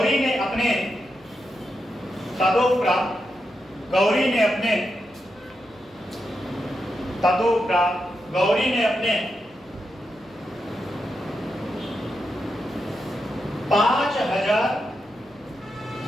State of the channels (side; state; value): right; noise; hum, 30 dB below the sound